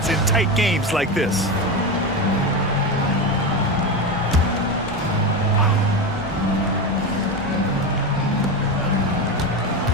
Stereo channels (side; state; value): both; normal; correlation 0.18